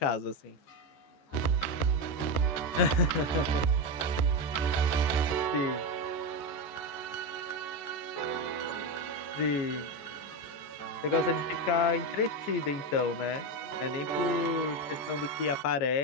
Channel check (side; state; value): right; late; 13 ms